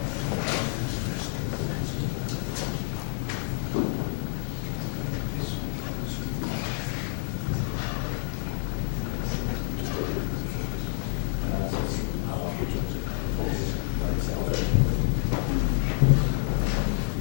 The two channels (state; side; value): silent; right; 59 dB below the other